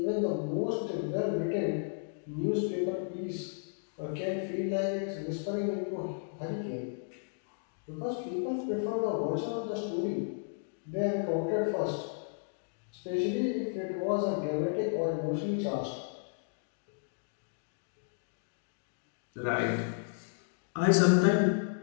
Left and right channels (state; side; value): silent; right; digital silence